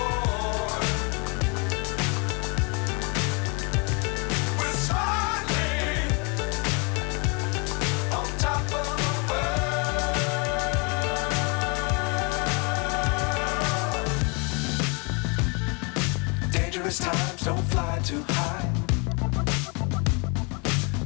Times don't fly too high.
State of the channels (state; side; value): quieter; right; 32.7 dB